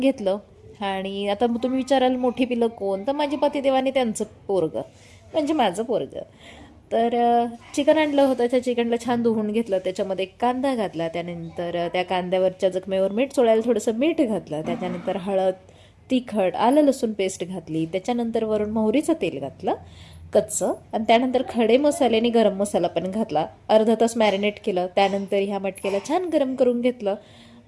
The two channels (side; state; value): both; identical; correlation 1.00